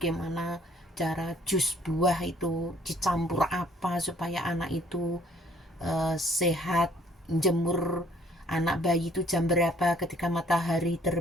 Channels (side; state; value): both; normal; correlation 0.61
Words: cara jus buah itu dicampur apa supaya anak itu sehat, jemur anak bayi itu jam berapa, ketika matahari